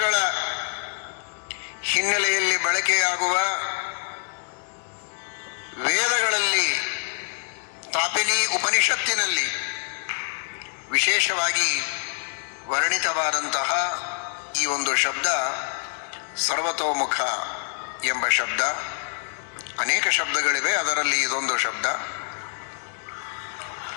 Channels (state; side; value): silent; right; digital silence